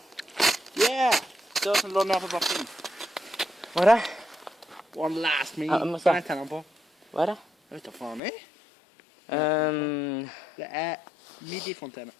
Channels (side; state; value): right; drops out; at 8.2 s